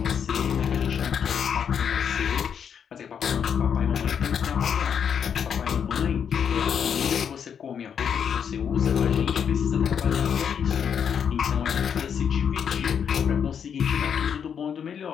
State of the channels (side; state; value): right; quieter; 7.7 dB